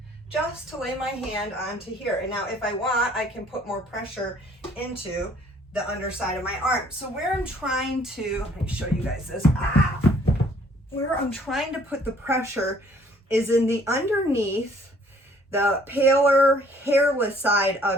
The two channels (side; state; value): both; normal; correlation 0.60